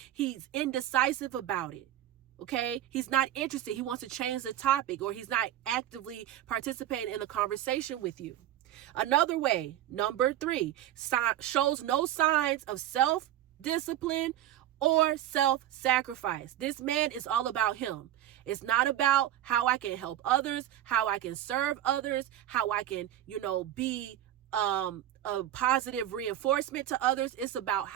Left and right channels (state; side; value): quieter; left; 12.5 dB